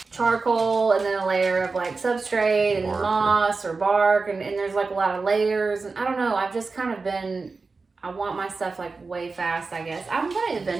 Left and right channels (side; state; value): left; quieter; 4.1 dB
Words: charcoal and then a layer of like substrate and moss or bark, and there's like a lot of layers, and I don't know, I've just kind of been, I want my stuff like way fast, I guess. I'm gonna